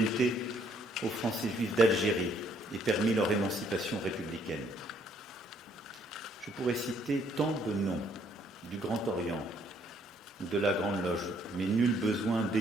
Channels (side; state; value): both; normal; correlation 0.66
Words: aux Français juifs d'Algérie et permit leur émancipation républicaine. Je pourrais citer tant de noms du Grand Orient ou de la Grande Loge, mais nul besoin